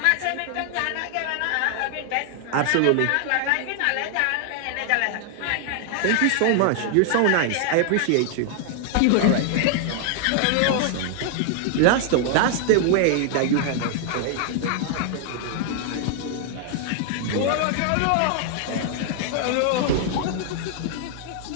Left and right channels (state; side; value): different; both; correlation 0.00